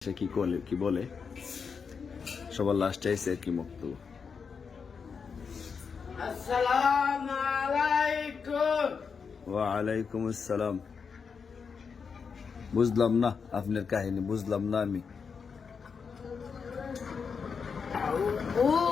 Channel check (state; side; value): quieter; right; 5.8 dB